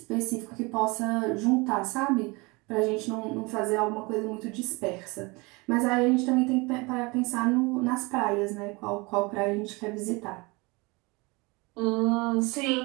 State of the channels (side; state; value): left; quieter; 26.1 dB